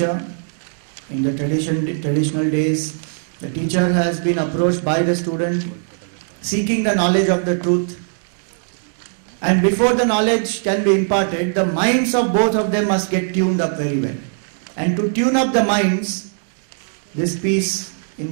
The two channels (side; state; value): left; silent; digital silence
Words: In the traditional days, the teacher has been approached by the student seeking the knowledge of the truth. And before the knowledge can be imparted, the minds of both of them must get tuned up very well. And to tune up the minds, these peace